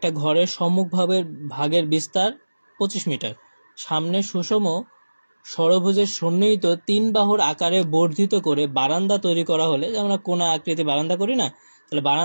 ঘরের সম্মুখভাবে ভাগের বিস্তার 25 মিটার, সামনে সুষম ষড়ভুজের সন্নিহিত 3 বাহুর আকারে বর্ধিত করে বারান্দা তৈরি করা হলে, যে আমরা কোনা আকৃতি বারান্দা করি না, তাহলে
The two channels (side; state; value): both; inverted; correlation -1.00